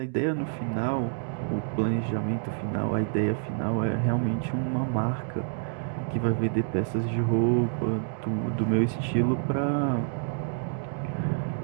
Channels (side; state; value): left; silent; 59 dB below the other